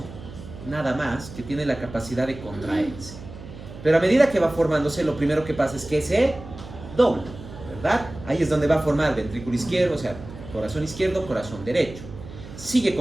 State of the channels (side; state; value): right; noise; hum, 14 dB below the sound